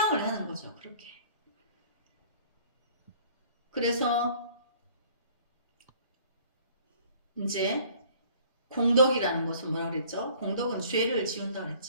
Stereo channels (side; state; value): both; inverted; correlation -0.53